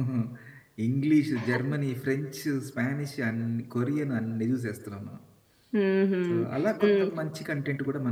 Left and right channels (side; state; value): both; identical; correlation 1.00